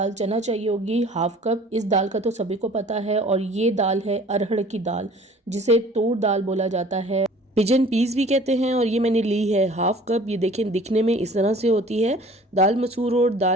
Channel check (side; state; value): both; normal; correlation 0.49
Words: चना चाहिए होगी हाफ कप। इस दाल का तो सभी को पता है, और ये दाल है अरहर की दाल, जिसे तूर दाल बोला जाता है, पिजन पीस भी कहते हैं। और ये मैंने ली है हाफ कप। ये देखें दिखने में इस तरह से होती है। दाल मसूर और